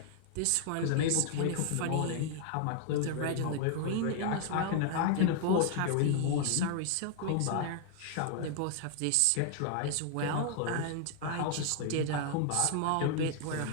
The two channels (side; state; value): both; different; correlation 0.00